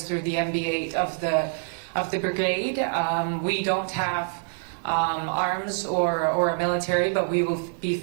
through the MB8 of the brigade. We don't have arms or a military, but we will be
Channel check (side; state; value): left; silent; 58 dB below the other